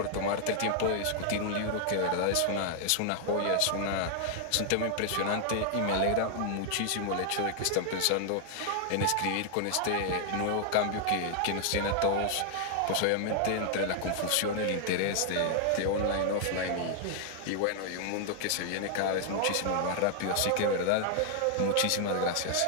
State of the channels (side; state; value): both; different; correlation 0.00